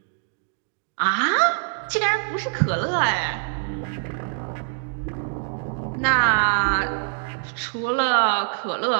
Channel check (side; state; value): left; silent; digital silence